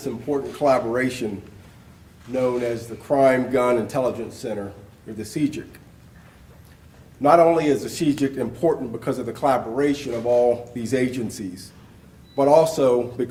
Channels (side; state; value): both; identical; correlation 1.00